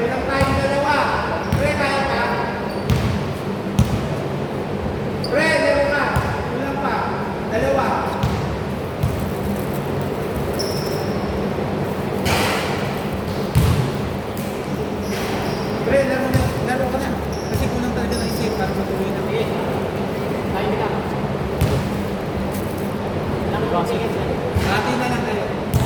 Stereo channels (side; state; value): both; identical; correlation 1.00